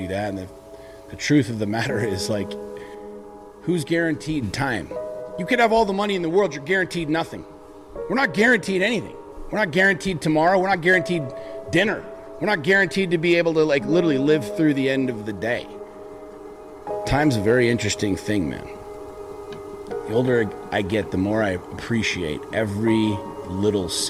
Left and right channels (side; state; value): both; identical; correlation 1.00